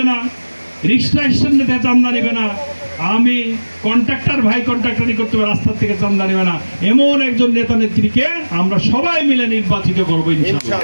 না, রিক্সা স্ট্যান্ডে থেকে চান্দা নেবে না, আমি কন্ট্রাক্টর ভাই কন্ট্রাক্টরি করতে হবে, রাস্তার থেকে চান্দা নেবে না। এমন একজন নেতা নেত্রীকে আমরা সবাই মিলে নির্বাচিত করবো ইনশাআল্লাহ।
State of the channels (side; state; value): both; inverted; correlation -1.00